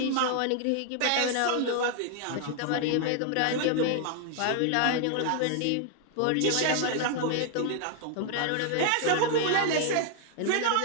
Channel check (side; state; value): both; different; correlation 0.00